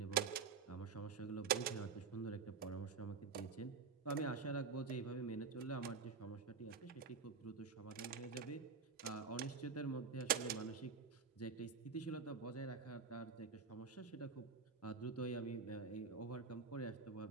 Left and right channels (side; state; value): left; quieter; 5.4 dB